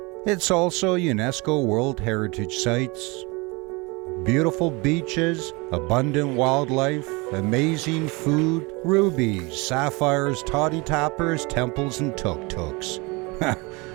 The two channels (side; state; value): left; quieter; 26.6 dB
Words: it's also UNESCO World Heritage Sites, beautiful beaches, abundant wildlife, amazing food, rubies, sapphires, toddy tappers, temples, and tuk-tuks.